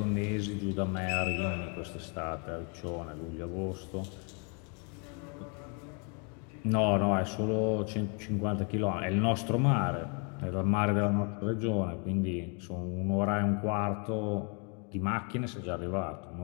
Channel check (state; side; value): quieter; right; 37.0 dB